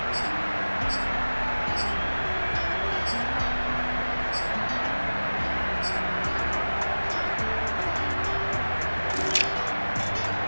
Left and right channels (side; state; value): both; inverted; correlation -1.00